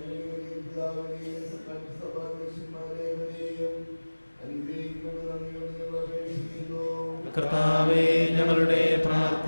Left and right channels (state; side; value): inverted; both; correlation -1.00